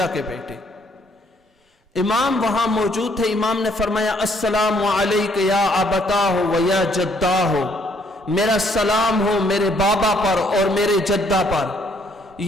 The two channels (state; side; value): normal; both; correlation 0.67